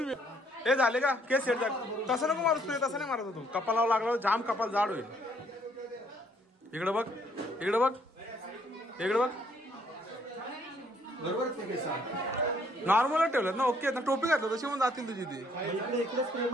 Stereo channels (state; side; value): normal; both; correlation 0.66